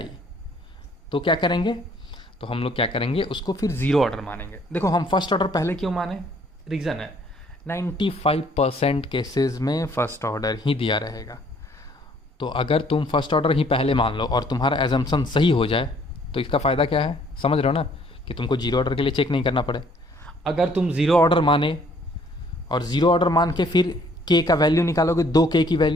तो क्या करेंगे, तो हम लोग क्या करेंगे, उसको फिर ज़ीरो ऑर्डर मानेंगे। देखो हम फर्स्ट ऑर्डर पहले क्यों माने, रीज़न है 95% केसेस में फर्स्ट ऑर्डर ही दिया रहेगा। तो अगर तुम फर्स्ट ऑर्डर ही पहले मान लो और तुम्हारा एजम्पशन सही हो जाए तो इसका फ़ायदा क्या है, समझ रहे हो ना, कि तुमको जीरो ऑर्डर के लिए चेक नहीं करना पड़े। अगर तुम ज़ीरो ऑर्डर माने और ज़ीरो ऑर्डर मान के फिर K का वैल्यू निकालोगे, दो K की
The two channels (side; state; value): both; normal; correlation 0.61